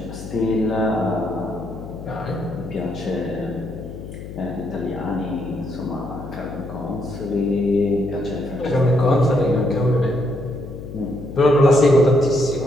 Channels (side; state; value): left; noise; hum, 11 dB below the sound